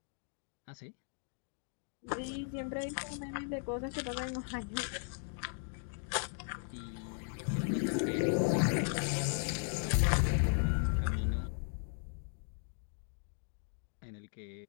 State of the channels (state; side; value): silent; right; 53 dB below the other